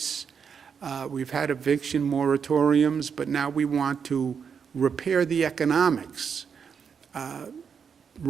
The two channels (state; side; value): quieter; left; 6.7 dB